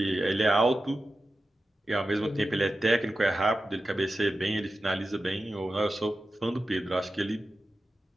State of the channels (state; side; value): normal; both; correlation 0.92